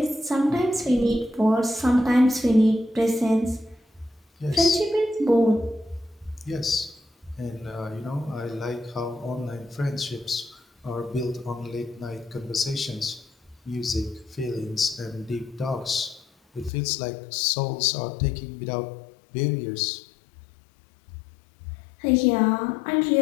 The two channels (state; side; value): drops out; right; at 16.7 s